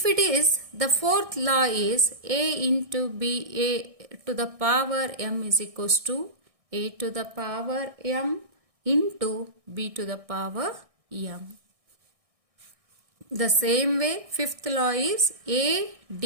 it is, the fourth law is a into b, a to the power m is equals to a to the power m into b to the power m. The same way, fifth law is a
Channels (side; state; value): left; late; 1.6 ms